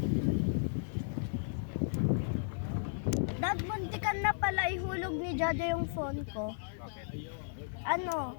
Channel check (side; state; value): right; silent; digital silence